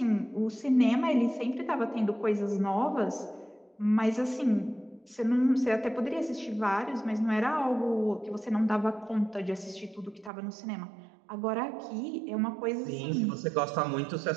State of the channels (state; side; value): drops out; left; at 10.3 s